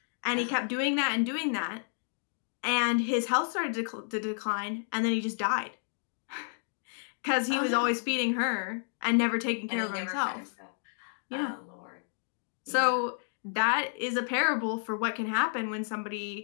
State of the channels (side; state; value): right; silent; digital silence